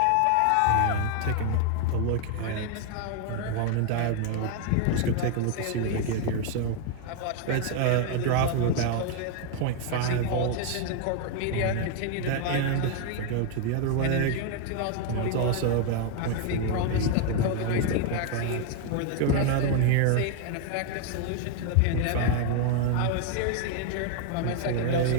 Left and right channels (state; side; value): different; both; correlation 0.00